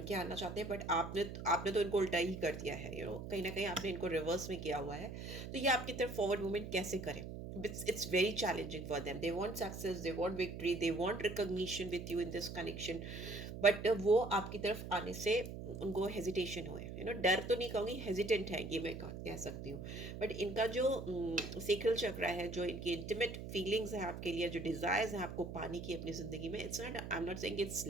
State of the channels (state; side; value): noise; right; hum, 8 dB below the sound